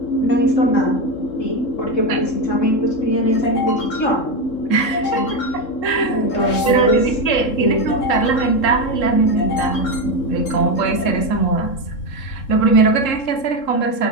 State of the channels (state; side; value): late; right; 3.7 ms